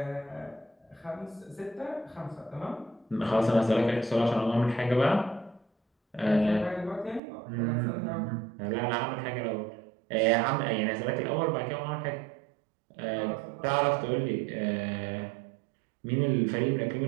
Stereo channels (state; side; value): drops out; left; at 7.2 s